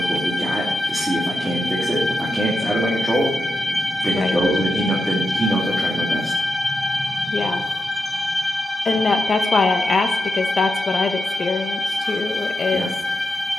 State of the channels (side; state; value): both; normal; correlation 0.88